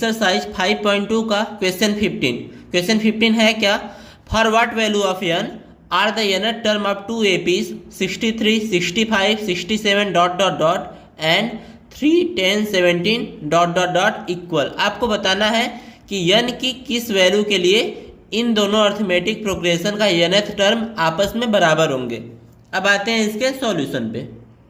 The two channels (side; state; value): both; identical; correlation 1.00